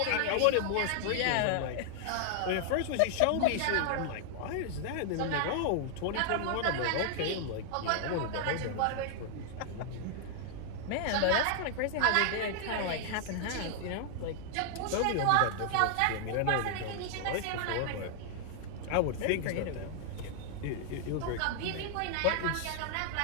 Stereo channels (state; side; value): different; both; correlation -0.01